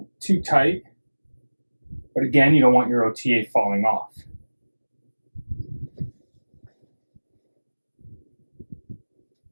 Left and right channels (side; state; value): both; inverted; correlation -1.00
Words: too tight, but again, you don't want your OTA falling off.